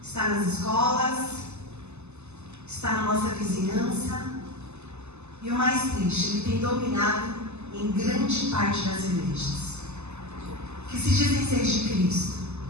está nas escolas, está na nossa vizinhança. E o mais triste, ele tem dominado em grande parte das igrejas, que se dizem ser de Cristo,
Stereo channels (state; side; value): late; left; 0.81 ms